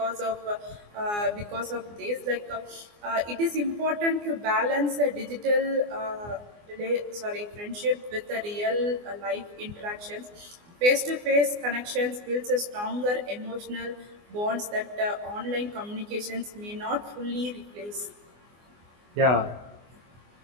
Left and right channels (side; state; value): left; late; 24 ms